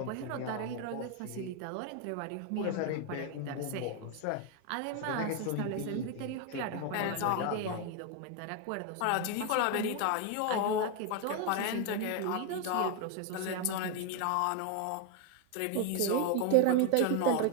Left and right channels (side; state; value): both; different; correlation 0.01